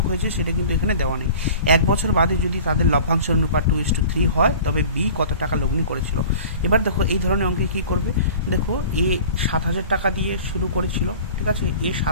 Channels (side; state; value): both; inverted; correlation -0.43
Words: হয়েছে সেটা কিন্তু এখানে দেওয়া নেই। 1 বছর বাদে যদি তাদের লভ্যাংশের অনুপাত 2:3 হয়, তবে বি কত টাকা লগ্নি করেছিল। এবার দেখো এই ধরনের অঙ্কে কী করবে। দেখো এ 7,000 টাকা দিয়ে শুরু করেছিল, ঠিক আছে। এ